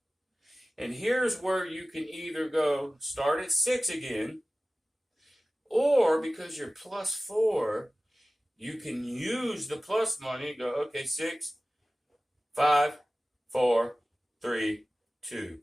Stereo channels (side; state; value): both; normal; correlation 0.97